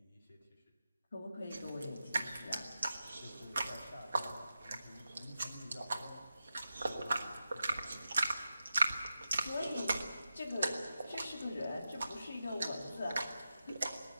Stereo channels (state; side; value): inverted; both; correlation -0.90